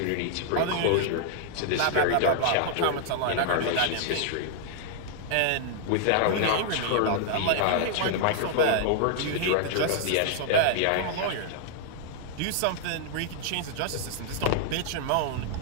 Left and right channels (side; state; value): both; different; correlation -0.01